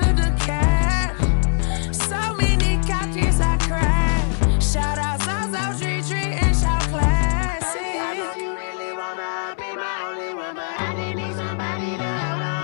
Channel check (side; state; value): right; silent; 64 dB below the other